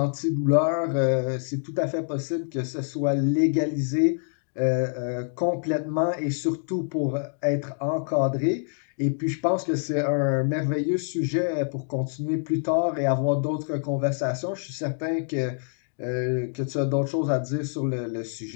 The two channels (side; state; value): right; silent; digital silence